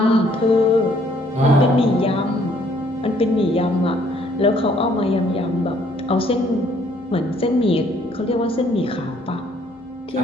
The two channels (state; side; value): normal; both; correlation 0.64